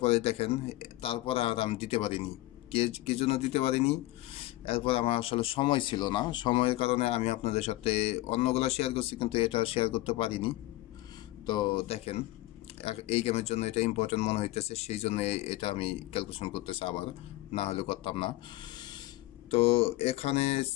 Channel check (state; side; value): quieter; right; 18.1 dB